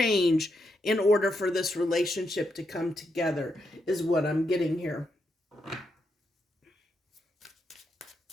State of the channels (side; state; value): both; normal; correlation 0.81